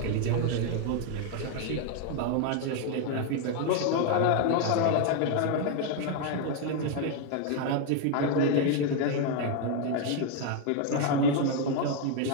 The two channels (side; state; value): both; different; correlation 0.01